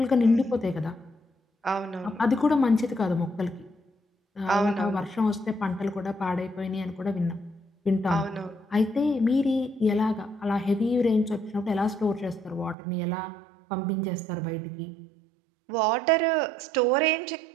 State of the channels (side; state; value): left; drops out; at 12.8 s